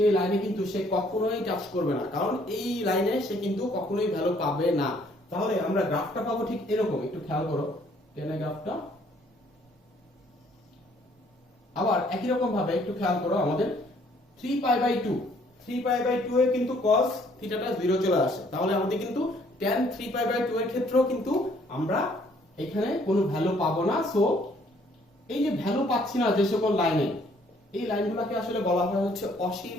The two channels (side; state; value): both; normal; correlation 0.63